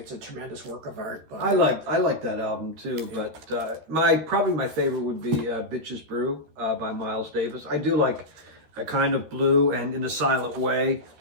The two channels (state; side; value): late; left; 13 ms